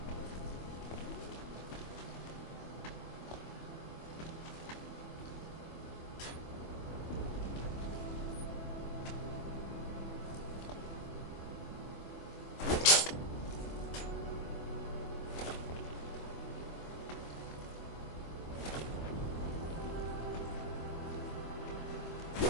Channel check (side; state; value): right; late; 25 ms